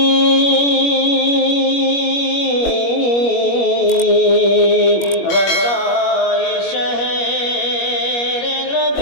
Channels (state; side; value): late; right; 21 ms